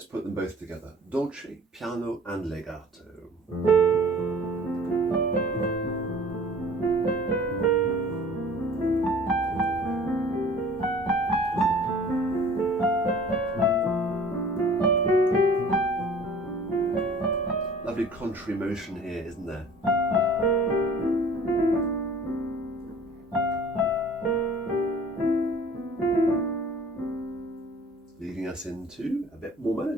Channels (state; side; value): normal; both; correlation 0.48